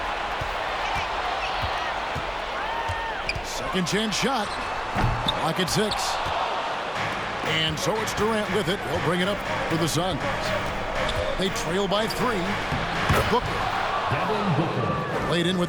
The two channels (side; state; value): both; identical; correlation 1.00